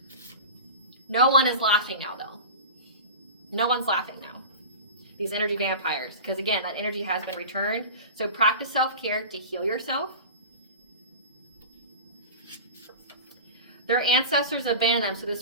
No one is laughing now, though. No one's laughing now. These energy vampires. Because again, that energy has been returned. So practice self-care to heal yourself. Their ancestors abandoned them. So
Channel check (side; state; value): both; inverted; correlation -0.32